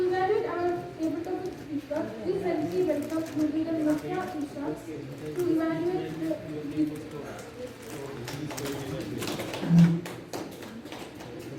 evaluate our table topic speaker, please help me welcome youth leader Nafia Isha to evaluate the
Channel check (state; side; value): identical; both; correlation 1.00